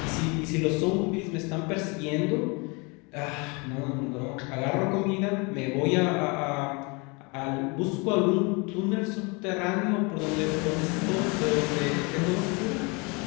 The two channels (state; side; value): quieter; right; 29.5 dB